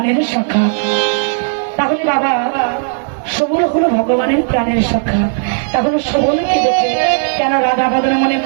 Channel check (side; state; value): left; silent; 70 dB below the other